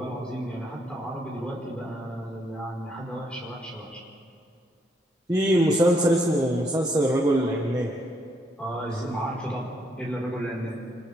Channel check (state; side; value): normal; both; correlation 0.73